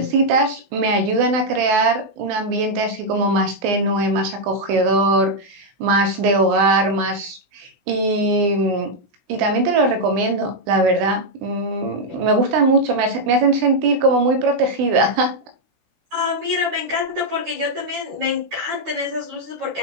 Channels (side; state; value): left; late; 16 ms